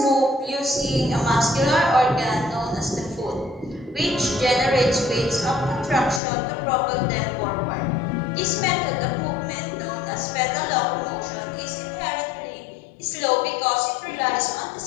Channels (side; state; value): right; drops out; at 6.2 s